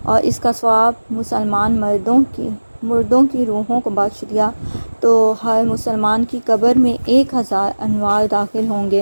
اور اس کا ثواب مسلمان مردوں کی روحوں کو بخش دیا تو ہر مسلمان کی قبر میں 1000 انوار داخل ہوں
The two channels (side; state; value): both; inverted; correlation -1.00